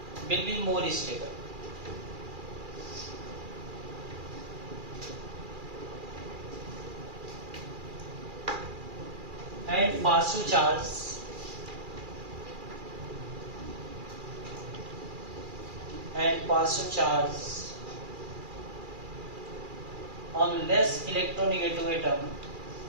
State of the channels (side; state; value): left; late; 2.4 ms